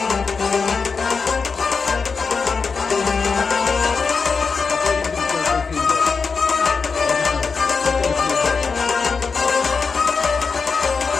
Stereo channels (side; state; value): right; quieter; 5.0 dB